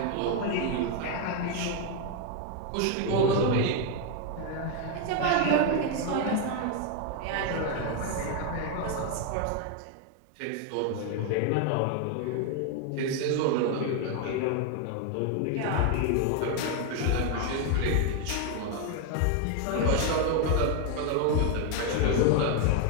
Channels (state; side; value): different; both; correlation 0.01